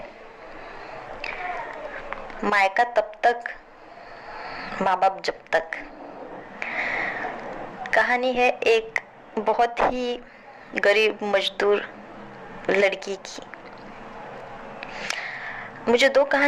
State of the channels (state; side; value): identical; both; correlation 1.00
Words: मायका तब तक, माँ बाप जब तक। कहानी है एक बहुत ही गरीब मजदूर लड़की की। मुझे दो